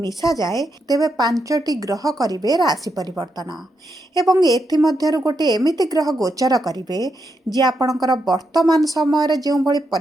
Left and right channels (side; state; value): both; normal; correlation 0.82